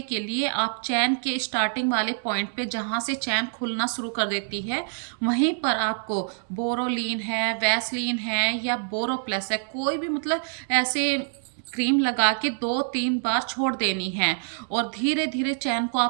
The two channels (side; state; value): left; silent; digital silence